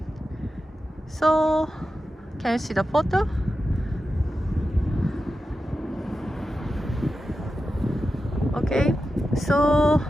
So can you see the photo? Okay, so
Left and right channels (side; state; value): both; normal; correlation 0.91